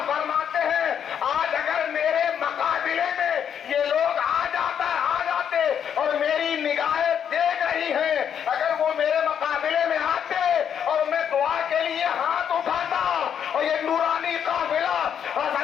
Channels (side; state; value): right; quieter; 8.4 dB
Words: فرماتے ہیں آج اگر میرے مقابلے میں یہ لوگ آ جاتے اور میری نگاہیں دیکھ رہی ہیں، اگر وہ میرے مقابلے میں آتے اور میں دعا کے لیے ہاتھ اٹھاتا اور یہ نورانی قافلہ